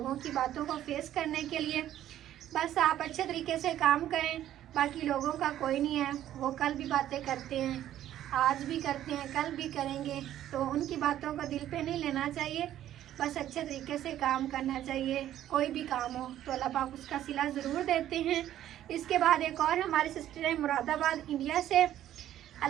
की बातों को फेस करने के लिए। बस आप अच्छे तरीके से काम करें, बाकी लोगों का कोई नहीं है, वो कल भी बातें करते हैं, आज भी करते हैं, कल भी करेंगे, तो उनकी बातों को दिल पे नहीं लेना चाहिए। बस अच्छे तरीके से काम करना चाहिए, कोई भी काम हो तो अल्लाह पाक उसका सिला ज़रूर देते हैं। इसके बाद एक और हमारी सिस्टर है मुरादाबाद इंडिया से,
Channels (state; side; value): quieter; left; 12.1 dB